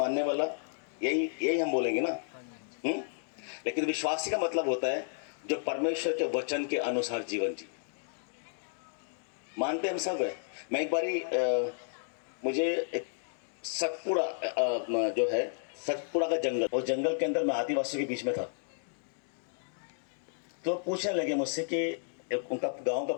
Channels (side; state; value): right; silent; digital silence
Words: वाला, यही हम बोलेंगे ना। लेकिन विश्वासी का मतलब होता है जो परमेश्वर के वचन के अनुसार जीवन जी। मानते हम सब है। मैं एक बारी मुझे एक सतपुड़ा जो है, सतपुड़ा का जंगल, और जंगल के अंदर मैं आदिवासियों के बीच में था। तो पूछने लगे मुझसे कि उनका गांव का